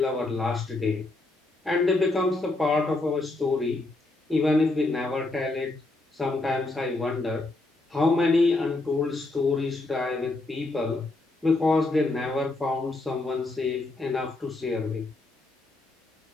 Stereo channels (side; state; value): right; quieter; 3.0 dB